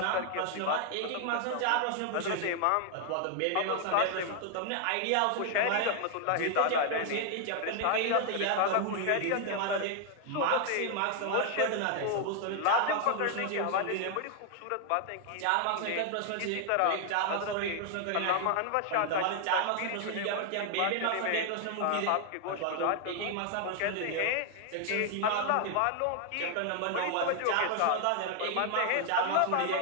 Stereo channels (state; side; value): different; both; correlation 0.00